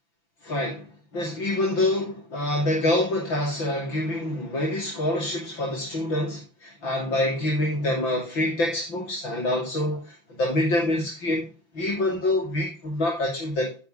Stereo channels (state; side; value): late; right; 5.9 ms